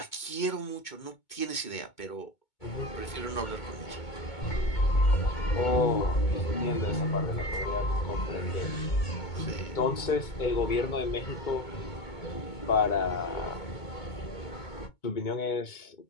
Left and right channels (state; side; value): late; right; 2.2 ms